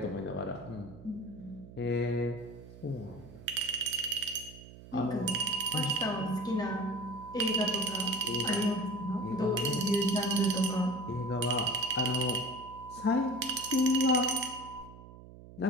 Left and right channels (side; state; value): right; noise; hum, 17 dB below the sound